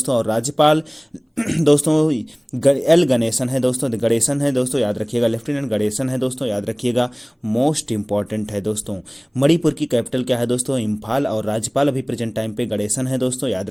और राज्यपाल दोस्तों एल गणेशन है दोस्तों, गणेशन है दोस्तों, याद रखिएगा, लेफ्टिनेंट गणेशन है दोस्तों, याद रखिएगा। मोस्ट इंपॉर्टेंट है दोस्तों, मणिपुर की कैपिटल क्या है दोस्तों? इम्फाल। और राज्यपाल अभी प्रेजेंट टाइम पे गणेशन है दोस्तों, याद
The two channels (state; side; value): identical; both; correlation 1.00